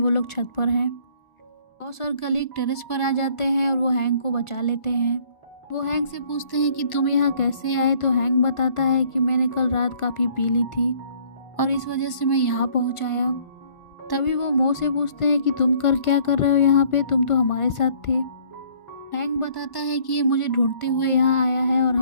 लोग छत पर हैं। बॉस और कलीग टेरेस पर आ जाते हैं और वो हैंक को बचा लेते हैं। वो हैंक से पूछते हैं कि तुम यहाँ कैसे आए, तो हैंक बताता है कि मैंने कल रात काफ़ी पी ली थी और इस वजह से मैं यहाँ पहुँच आया। तभी वो मो से पूछते हैं कि तुम क्या कर रहे हो यहाँ पे, तुम तो हमारे साथ थे। हैंक बताता है कि ये मुझे ढूंढते हुए यहाँ आया है और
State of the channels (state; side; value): late; right; 1.2 ms